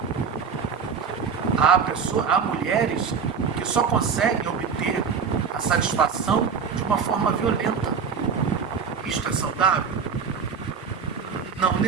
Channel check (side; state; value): left; quieter; 6.1 dB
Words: Há mulheres que só conseguem obter a satisfação de uma forma violenta. Isto é saudável? Não